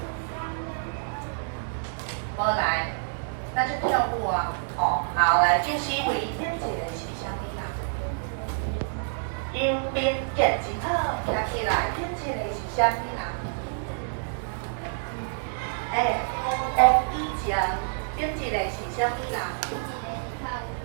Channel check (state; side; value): silent; left; digital silence